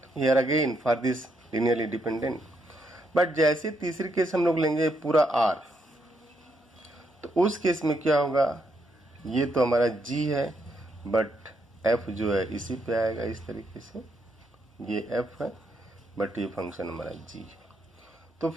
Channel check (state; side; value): normal; both; correlation 0.77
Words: here again for this linearly dependent. But जैसे तीसरी केस हम लोग लेंगे पूरा r, तो उस केस में क्या होगा, ये तो हमारा g है बट f जो है इसी पे आएगा इस तरीके से, ये f है बट ये फंक्शन हमारा g है। तो